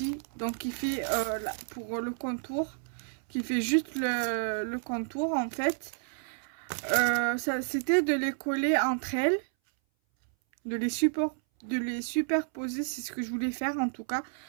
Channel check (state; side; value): silent; left; 57 dB below the other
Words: donc qui fait pour le contour, qui fait juste le contour en fait. Ça c'était de les coller entre elles, de les superposer, c'est ce que je voulais faire en tout cas